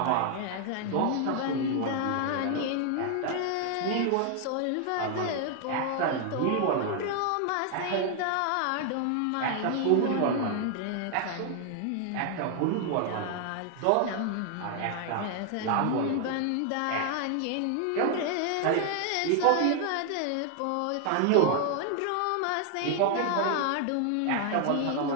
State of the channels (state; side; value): different; both; correlation 0.00